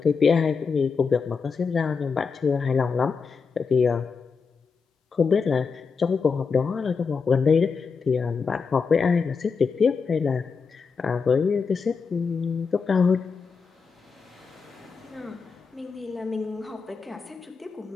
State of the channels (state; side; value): quieter; right; 5.3 dB